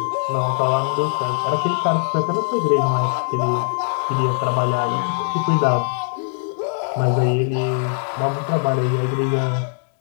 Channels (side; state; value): right; silent; digital silence